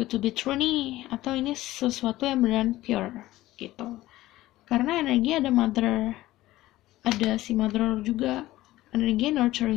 to be true nih, atau ini sesuatu yang beneran pure gitu. Karena energi ada mother, ada si mother juga, energi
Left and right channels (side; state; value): right; quieter; 16.4 dB